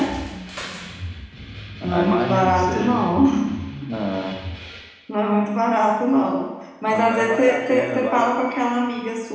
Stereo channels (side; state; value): both; identical; correlation 1.00